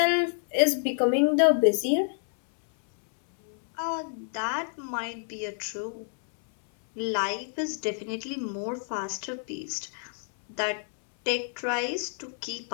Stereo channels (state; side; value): silent; right; 58 dB below the other